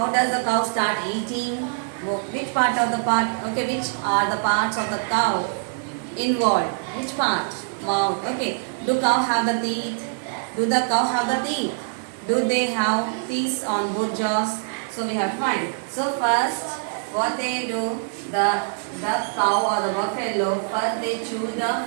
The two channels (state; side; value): silent; left; digital silence